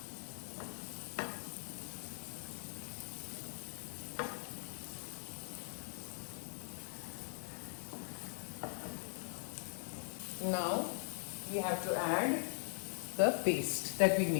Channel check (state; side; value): silent; right; 50 dB below the other